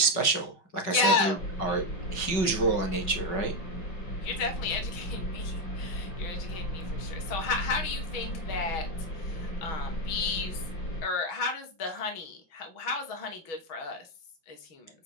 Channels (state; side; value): late; right; 5.4 ms